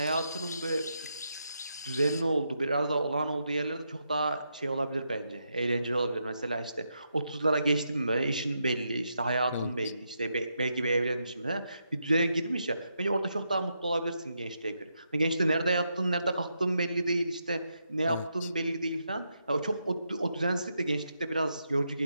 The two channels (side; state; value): both; inverted; correlation -0.82